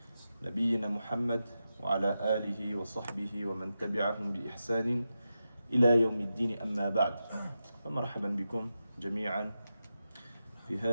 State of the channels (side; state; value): both; inverted; correlation -0.90